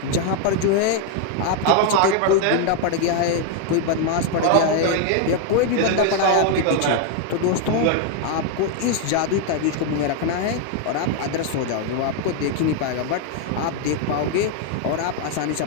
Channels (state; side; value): different; both; correlation 0.00